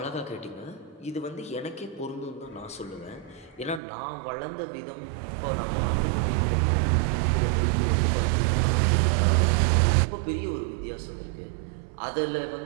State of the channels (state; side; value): drops out; left; at 3.8 s